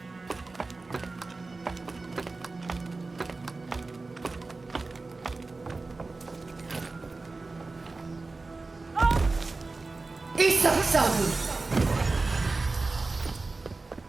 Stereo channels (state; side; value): quieter; left; 3.6 dB